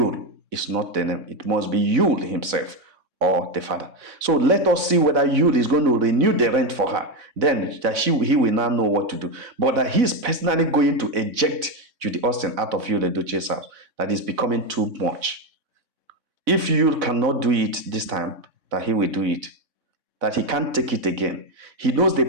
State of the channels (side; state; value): left; late; 4.0 ms